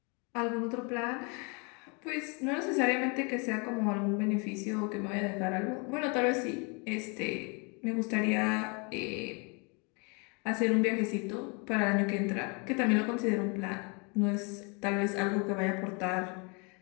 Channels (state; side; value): quieter; right; 32.6 dB